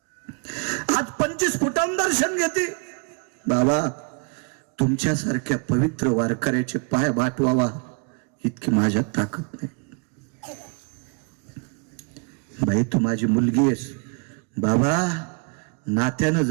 आज 25 फुटांवर दर्शन घेते. बाबा तुमच्यासारख्या पवित्र वारकऱ्याचे पाय बाटवावा इतकी माझ्यात ताकद नाही. बाई तू माझी मुलगी आहेस. बाबा नात्यानं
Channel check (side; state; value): left; quieter; 34.6 dB